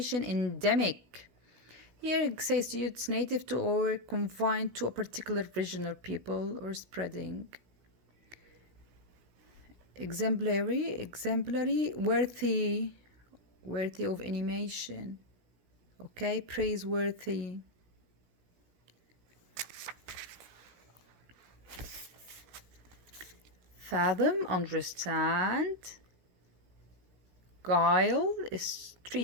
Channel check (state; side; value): late; left; 16 ms